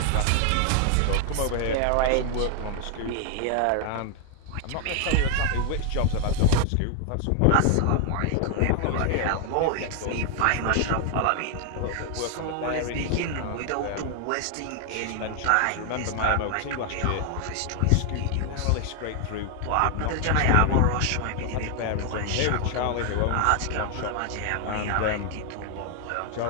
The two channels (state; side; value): different; both; correlation 0.00